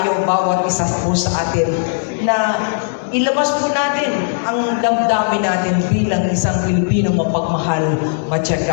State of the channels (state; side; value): silent; right; 68 dB below the other